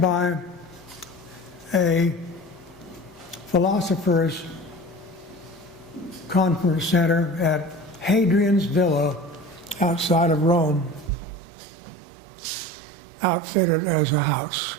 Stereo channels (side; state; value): left; drops out; at 11.1 s